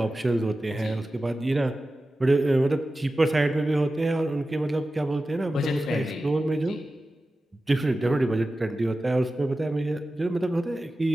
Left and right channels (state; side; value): normal; both; correlation 0.94